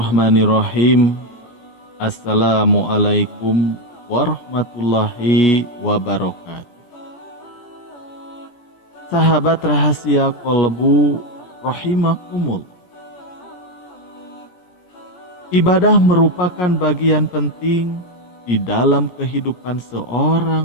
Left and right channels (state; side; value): late; right; 18 ms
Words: Assalamualaikum warahmatullahi wabarakatuh. Sahabat rahasia kolbu rahimakumullah. Ibadah merupakan bagian penting di dalam kehidupan